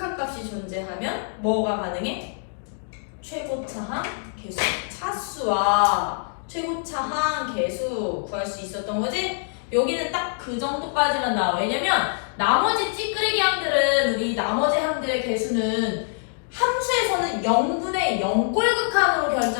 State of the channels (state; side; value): silent; right; digital silence